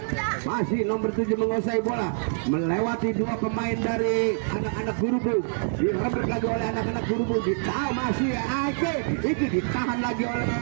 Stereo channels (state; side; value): silent; left; digital silence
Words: Masih nomor 7 menguasai bola, melewati dua pemain dari anak-anak Gerubuk, direbut lagi oleh anak-anak Gerubuk. Ditahan masih Iki, ditahan lagi oleh